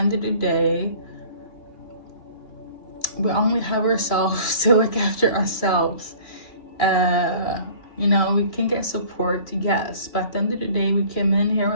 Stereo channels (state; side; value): late; right; 2.9 ms